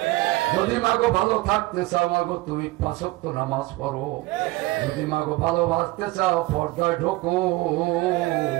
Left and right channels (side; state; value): left; quieter; 19.7 dB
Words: যদি মাগো ভালো থাকতে চাও মাগো তুমি 5 ওয়াক্ত নামাজ পড়ো, যদি মাগো ভালোবাসতে চাও পর্দায় ঢোকো।